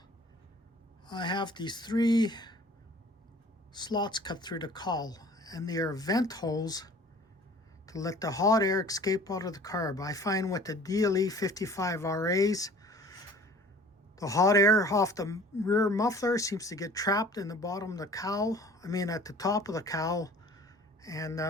I have these 3 slots cut through the cowl, and they are vent holes to let the hot air escape out of the carb. I find with the DLE55RAs, the hot air off the rear muffler seems to get trapped in the bottom of the cowl, at the top of the cowl, and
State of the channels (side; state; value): both; normal; correlation 0.48